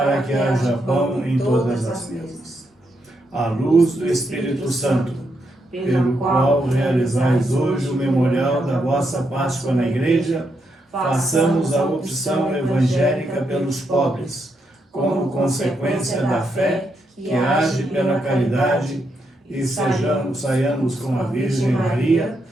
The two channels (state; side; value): normal; both; correlation 0.80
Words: que haja pão em todas as mesas. À luz do Espírito Santo, pelo qual realizais hoje o memorial da vossa Páscoa na Igreja, façamos a opção evangélica pelos pobres, como consequência da fé que age pela caridade, e saiamos com a Virgem Maria,